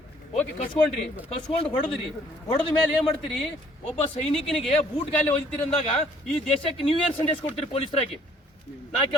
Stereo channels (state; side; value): normal; both; correlation 0.61